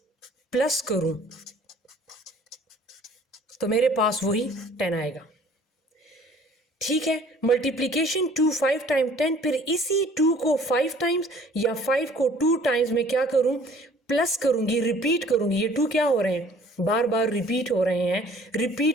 प्लस करूँ तो मेरे पास वही 10 आएगा। ठीक है, मल्टीप्लिकेशन 2 5 टाइम 10, फिर इसी 2 को 5 टाइम्स या 5 को 2 टाइम्स में क्या करूं, प्लस करूंगी, रिपीट करूंगी। ये 2 क्या हो रहे हैं, बार बार रिपीट हो रहे हैं,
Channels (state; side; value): normal; both; correlation 0.53